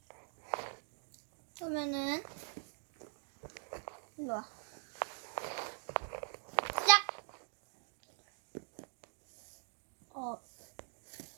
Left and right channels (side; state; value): left; silent; digital silence